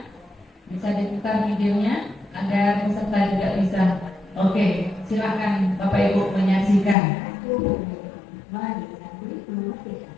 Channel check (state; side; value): drops out; right; at 7.0 s